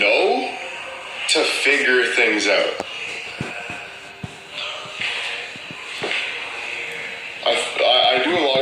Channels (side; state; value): both; identical; correlation 1.00